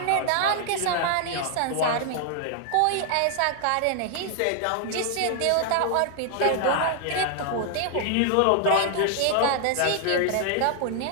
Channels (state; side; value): different; both; correlation 0.00